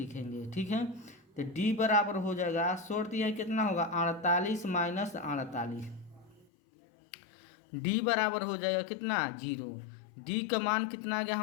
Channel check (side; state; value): right; drops out; at 6.5 s